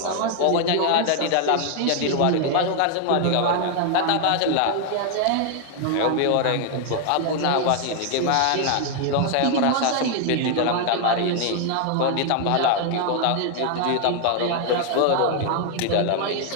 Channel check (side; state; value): both; different; correlation 0.00